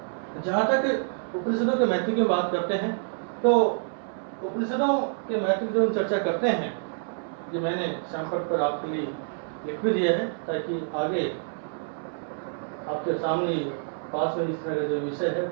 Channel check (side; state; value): left; silent; 59 dB below the other